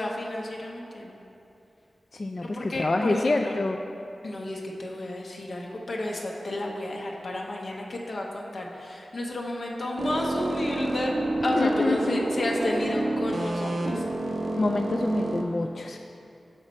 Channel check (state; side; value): normal; both; correlation 0.94